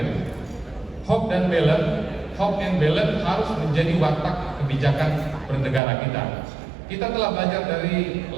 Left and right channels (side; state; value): left; drops out; at 5.8 s